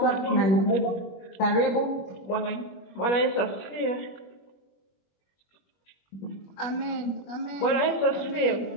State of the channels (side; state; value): right; late; 21 ms